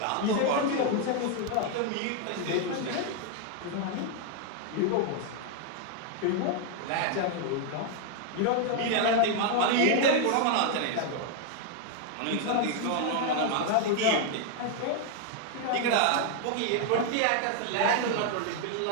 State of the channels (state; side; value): different; both; correlation 0.00